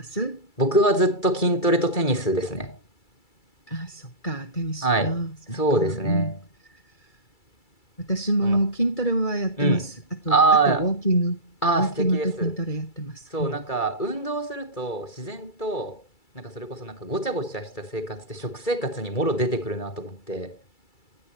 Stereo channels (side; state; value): right; late; 2.3 ms